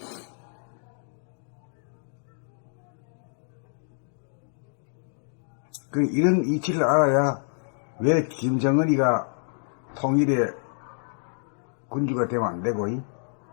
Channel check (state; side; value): silent; right; digital silence